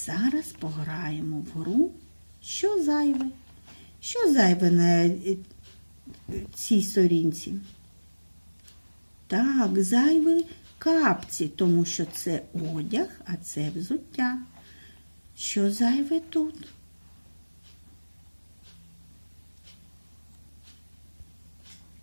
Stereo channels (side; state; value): both; inverted; correlation -1.00